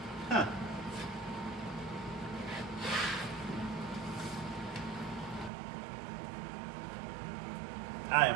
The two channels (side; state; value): left; drops out; at 5.5 s